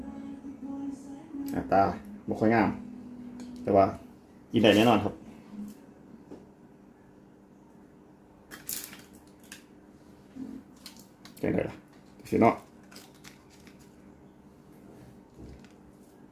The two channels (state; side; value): identical; both; correlation 1.00